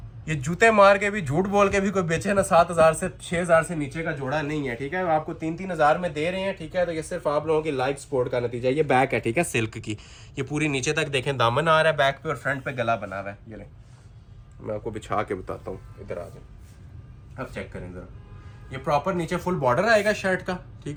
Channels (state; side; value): identical; both; correlation 1.00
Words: ये जूते मार के भी, झूठ बोल के भी कोई बेचे ना 7000 से 6000 से नीचे का जोड़ा नहीं है, ठीक है। आपको 3-3 हजार में दे रहे हैं, ठीक है। तो ये सिर्फ आप लोगों की लाइव सपोर्ट का नतीजा है। ये बैक है, ठीक है, सिल्क की। ये पूरी नीचे तक देखें दामन आ रहा है बैक पे, और फ्रंट पे गला बना हुआ है। ये ले मैं आपको बिछा के बताता हूँ, इधर आ जाए, अब चेक करें जरा। ये प्रॉपर नीचे फुल बॉर्डर आएगा शर्ट का,